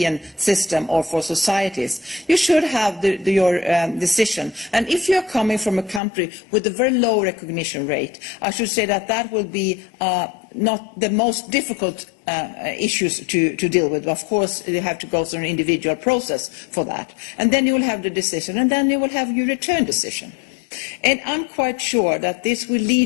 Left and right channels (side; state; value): right; drops out; at 6.0 s